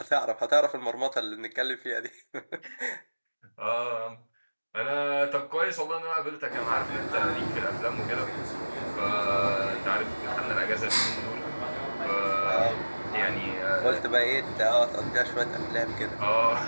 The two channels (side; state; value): both; inverted; correlation -1.00